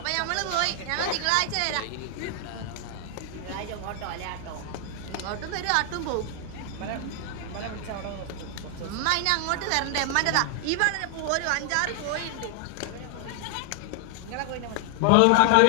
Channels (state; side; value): different; both; correlation 0.00